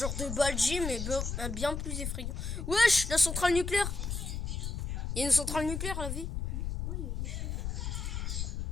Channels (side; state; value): left; noise; rumble, 3 dB below the sound